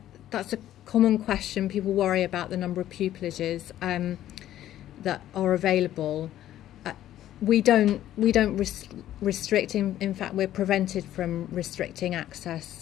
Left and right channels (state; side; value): quieter; right; 12.6 dB